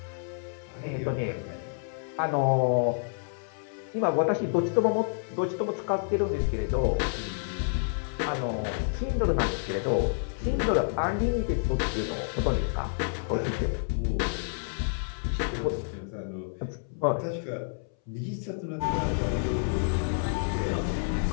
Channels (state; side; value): silent; right; 59 dB below the other